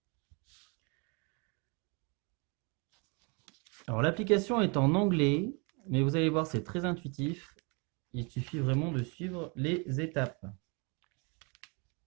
Alors, l'application est en anglais, mais vous allez voir, c'est très intuitif. Il suffit vraiment de suivre les étapes.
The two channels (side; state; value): left; quieter; 32.9 dB